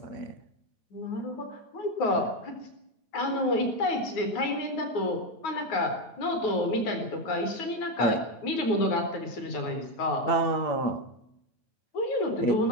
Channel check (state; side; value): late; right; 9.4 ms